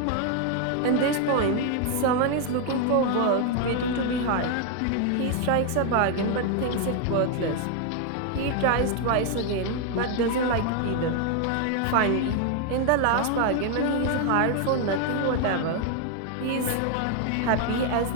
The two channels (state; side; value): different; both; correlation 0.00